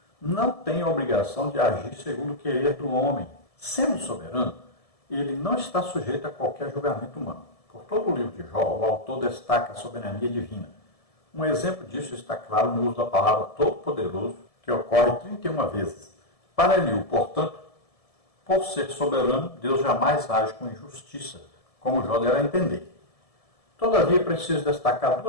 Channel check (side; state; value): right; late; 1.7 ms